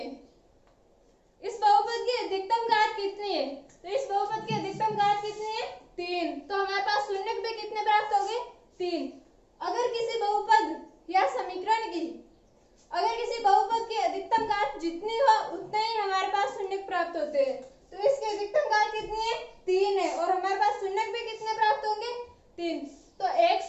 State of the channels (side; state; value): both; identical; correlation 1.00